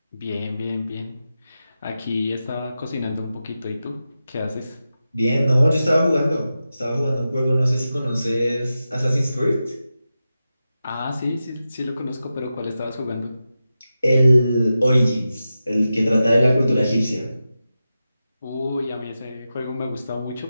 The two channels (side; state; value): both; inverted; correlation -0.92